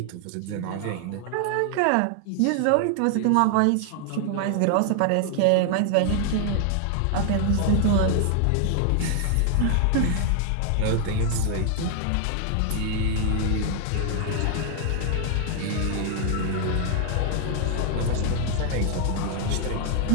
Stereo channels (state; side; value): different; both; correlation 0.00